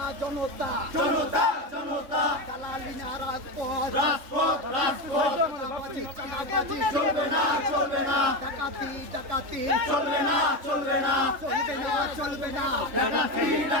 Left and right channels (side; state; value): left; late; 3.4 ms